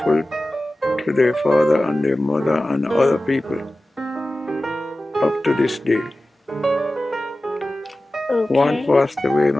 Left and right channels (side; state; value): both; normal; correlation 0.95